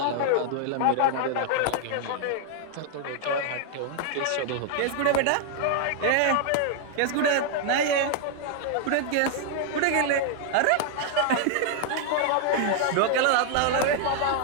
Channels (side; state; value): both; different; correlation 0.00